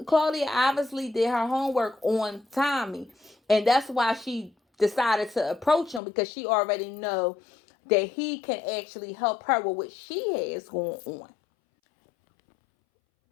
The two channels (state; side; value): drops out; right; at 6.0 s